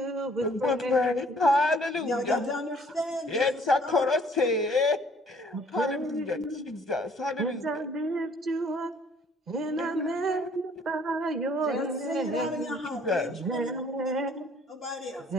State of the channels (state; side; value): normal; both; correlation 0.58